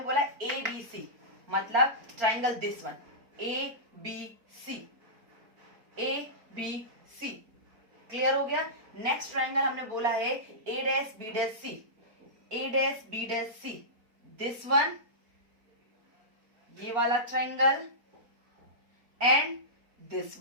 बोला ए बी सी मतलब triangle this one A B C, A B C. Clear हो गया। नेक्स्ट ट्राइंगल हमने बोला है A dash B dash C, A dash B dash C, this one, ये वाला ट्राइंगल, एंड दिस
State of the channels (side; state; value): left; late; 4.4 ms